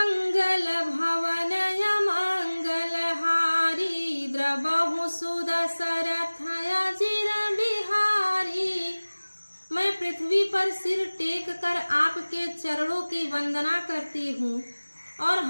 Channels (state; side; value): inverted; both; correlation -1.00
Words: भवनय मंगल हारी, द्रबहु सुदशरथ अजिर बिहारी। मैं पृथ्वी पर सिर टेक कर आपके चरणों की वंदना करती हूँ और